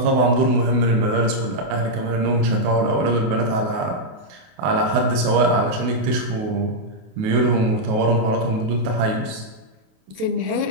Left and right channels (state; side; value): late; left; 28 ms